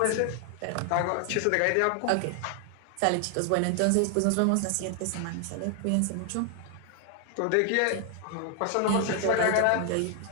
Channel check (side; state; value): both; different; correlation 0.00